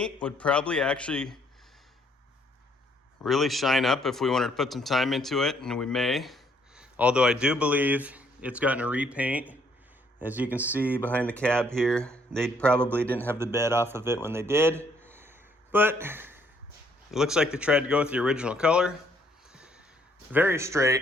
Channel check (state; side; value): normal; both; correlation 0.67